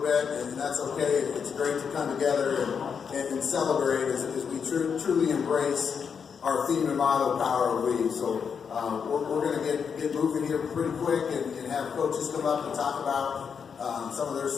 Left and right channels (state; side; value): quieter; right; 6.6 dB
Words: bit, and that's okay. It's great to come together and celebrate as we truly embrace our theme and motto, Power of We. So we're going to get moving here pretty quick and have coaches come up and talk about some of their